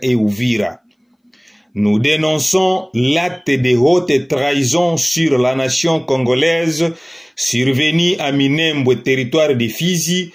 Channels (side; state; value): both; identical; correlation 1.00